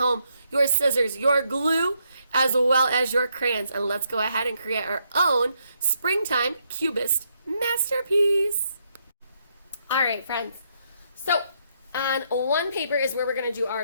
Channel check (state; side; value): inverted; both; correlation -0.76